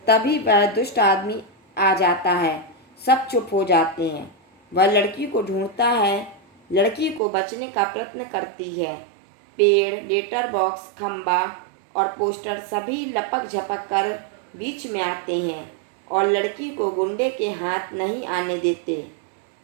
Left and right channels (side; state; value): left; drops out; at 7.2 s